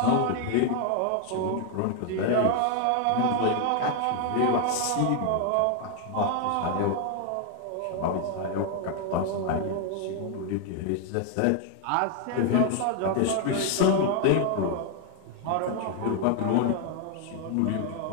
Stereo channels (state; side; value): different; both; correlation 0.00